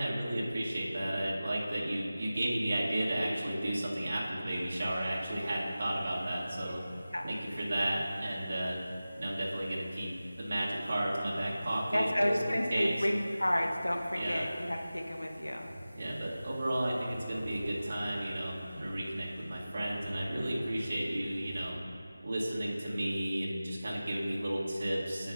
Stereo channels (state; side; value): inverted; both; correlation -0.96